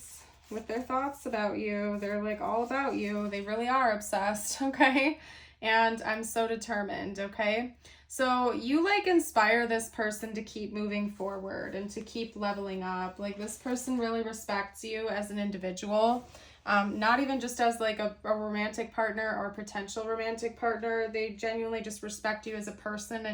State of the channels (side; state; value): both; identical; correlation 1.00